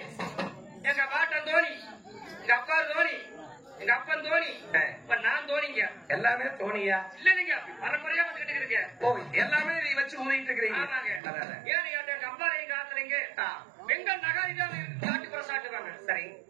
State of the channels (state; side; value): drops out; left; at 11.2 s